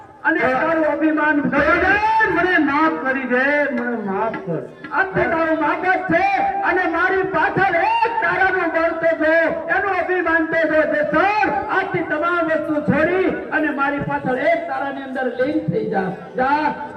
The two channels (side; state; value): both; identical; correlation 1.00